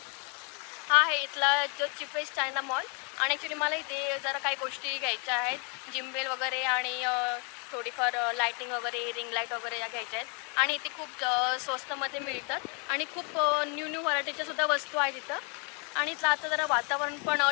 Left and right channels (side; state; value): right; quieter; 36.0 dB